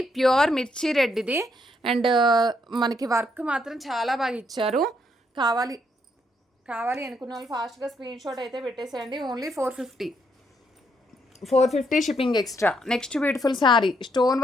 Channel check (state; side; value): normal; both; correlation 0.74